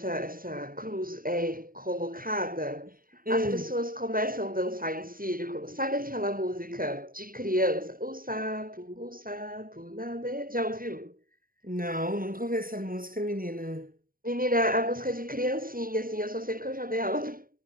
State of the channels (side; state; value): left; late; 0.41 ms